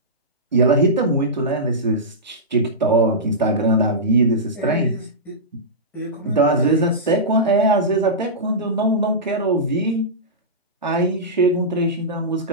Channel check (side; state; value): both; normal; correlation -0.15